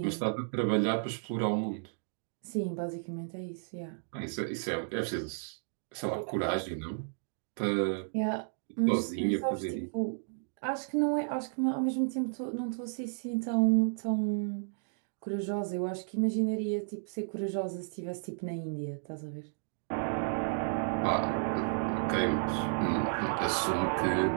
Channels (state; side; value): silent; left; digital silence